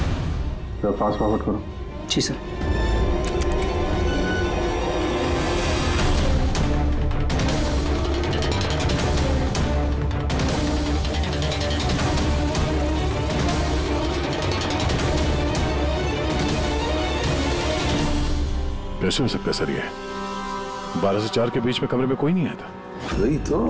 तो फास्ट फॉरवर्ड करो। जी सर। कैसे हो सकता है सर ये? 12 से 4 के बीच में कमरे में कोई नहीं आया था। वही तो,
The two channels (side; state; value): both; identical; correlation 1.00